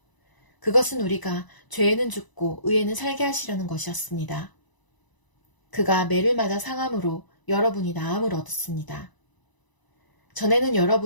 그것은 우리가 죄에는 죽고 의에는 살게 하시려는 것이었습니다. 그가 매를 맞아 상함으로 여러분이 나음을 얻었습니다. 전에는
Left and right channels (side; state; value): right; late; 1.0 ms